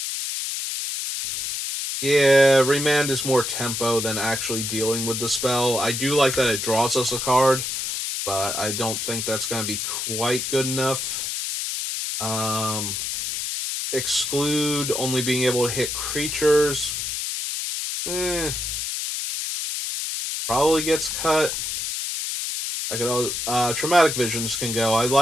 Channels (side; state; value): left; noise; hiss, 3 dB below the sound